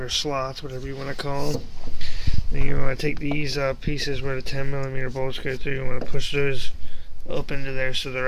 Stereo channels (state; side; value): identical; both; correlation 1.00